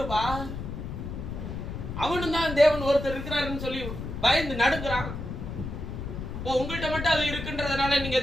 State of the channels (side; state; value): left; noise; rumble, 7 dB below the sound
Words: அவனும் தான் தேவன் ஒருத்தர் இருக்கிறாருன்னு சொல்லி பயந்து நடுங்குறான். உங்கள்கிட்ட மட்டும் அது இருக்குன்றதுனால நீங்க